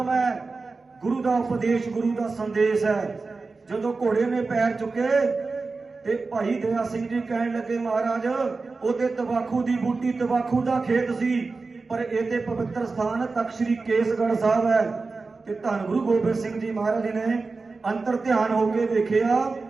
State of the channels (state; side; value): quieter; left; 4.0 dB